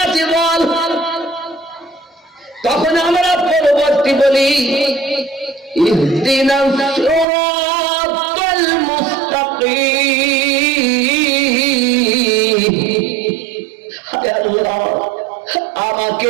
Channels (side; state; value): left; drops out; at 7.2 s